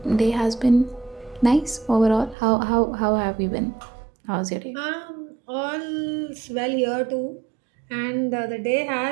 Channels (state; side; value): drops out; left; at 2.4 s